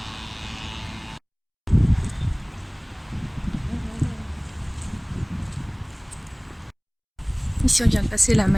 Ici on vient de passer la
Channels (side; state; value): both; identical; correlation 1.00